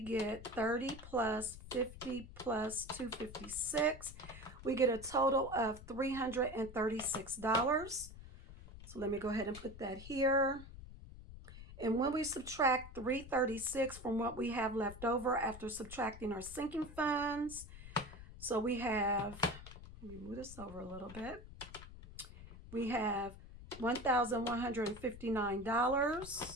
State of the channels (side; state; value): left; noise; rumble, 15 dB below the sound